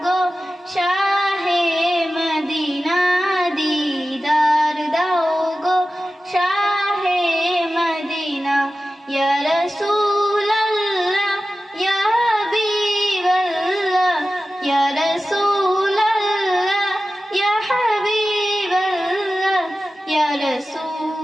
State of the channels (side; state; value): both; normal; correlation 0.94